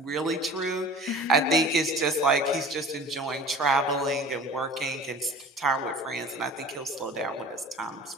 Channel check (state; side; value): normal; both; correlation 0.42